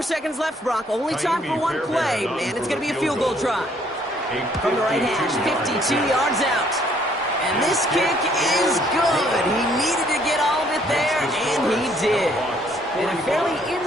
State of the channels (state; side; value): normal; both; correlation 0.64